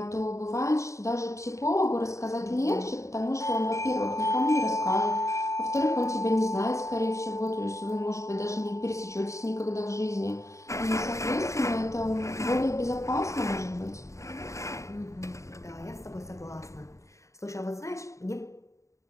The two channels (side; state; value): right; late; 0.15 ms